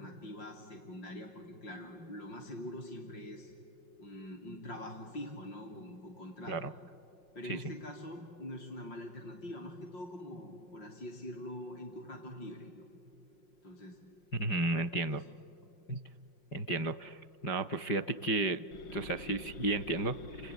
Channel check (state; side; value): late; right; 5.6 ms